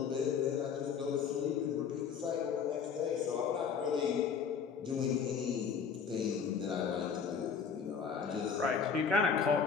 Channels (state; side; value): quieter; right; 6.5 dB